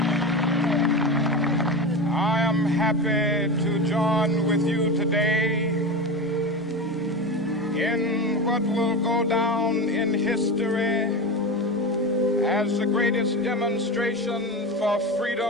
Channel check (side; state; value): both; normal; correlation 0.23